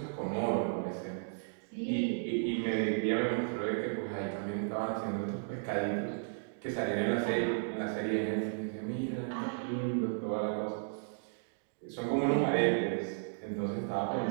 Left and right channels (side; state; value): left; silent; digital silence